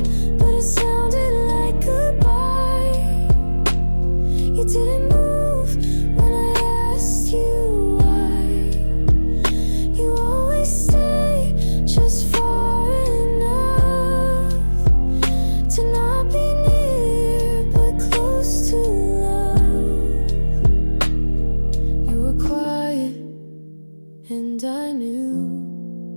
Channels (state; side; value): inverted; both; correlation -1.00